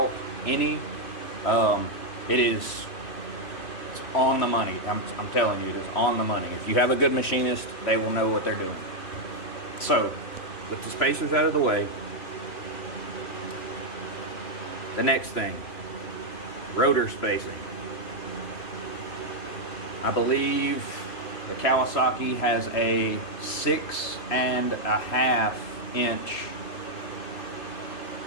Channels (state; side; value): late; right; 3.0 ms